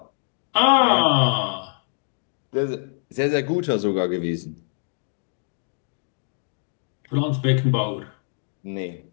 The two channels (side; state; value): right; silent; digital silence